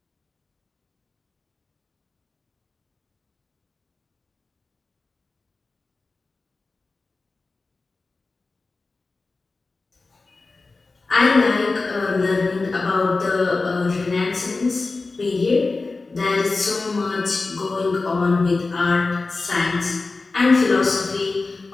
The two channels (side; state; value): right; quieter; 3.7 dB